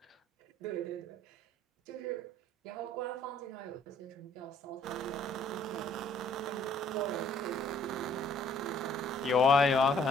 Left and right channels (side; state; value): both; normal; correlation 0.61